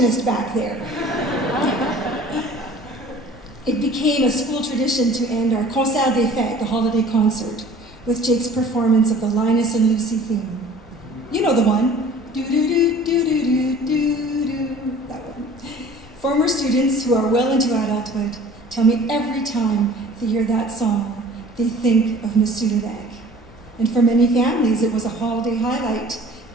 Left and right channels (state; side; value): normal; both; correlation 0.47